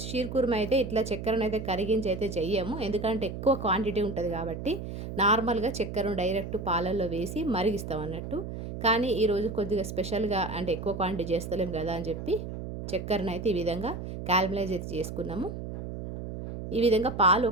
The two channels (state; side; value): noise; right; hum, 7 dB below the sound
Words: కుర్మా అయితే ఇట్లా చక్కెరనైతే కరిగించి అయితే చెయ్యము. ఎందుకంటే ఎక్కువ క్వాంటిటీ ఉంటుంది కాబట్టి నార్మల్గా చక్కెరను డైరెక్ట్ పాలల్లో వేసి మరిగిస్తాం అన్నట్టు. కానీ ఈరోజు కొద్దిగా స్పెషల్గా అంటే ఎక్కువ క్వాంటిటీ చేస్తలేం కదా అని చెప్పి చక్కెరనైతే ఈ విధంగా క్యారమలైజ్ అయితే చేసుకున్నాము. ఈ విధంగా పాలు